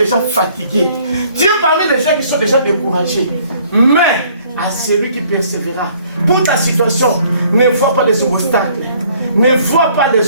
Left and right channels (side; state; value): both; inverted; correlation -0.60